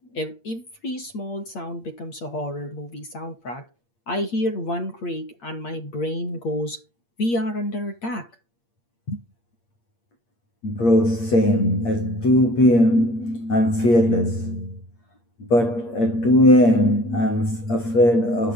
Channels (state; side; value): late; right; 8.6 ms